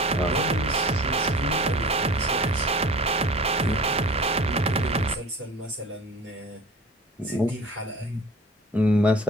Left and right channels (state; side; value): normal; both; correlation 0.41